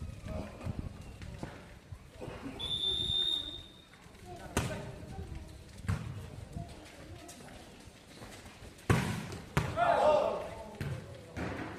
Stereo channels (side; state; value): both; identical; correlation 1.00